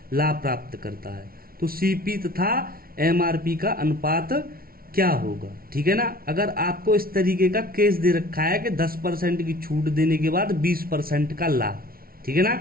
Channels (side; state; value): left; late; 0.43 ms